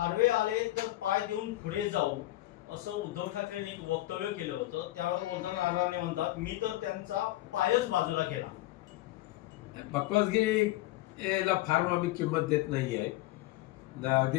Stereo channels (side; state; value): right; quieter; 17.1 dB